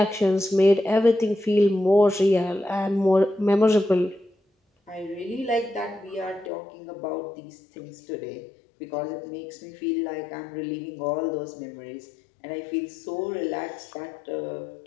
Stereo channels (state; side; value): drops out; right; at 6.5 s